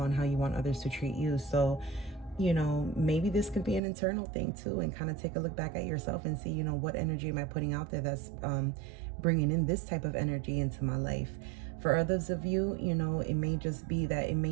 how you want others to treat you. So, maybe this could be an internal thing too, and kind of take a look back at yourself and see, what energy am I putting out there that's bringing in this type of energy into my life. For others of you, it may just be that it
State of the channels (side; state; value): left; drops out; at 3.8 s